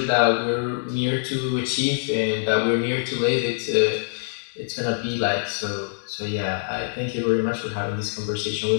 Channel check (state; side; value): silent; right; digital silence